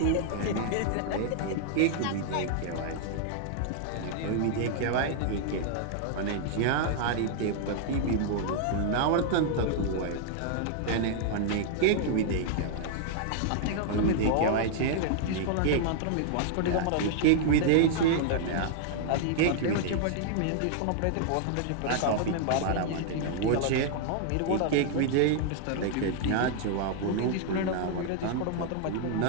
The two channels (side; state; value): both; different; correlation 0.00